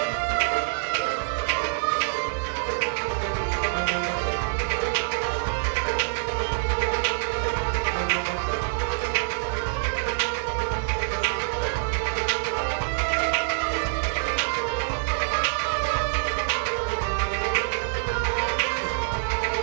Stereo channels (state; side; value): silent; left; 61 dB below the other